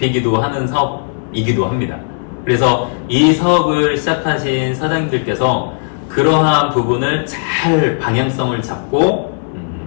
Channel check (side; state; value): right; silent; 60 dB below the other